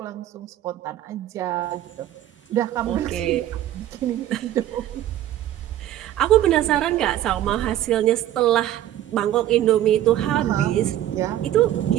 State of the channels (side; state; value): left; quieter; 12.5 dB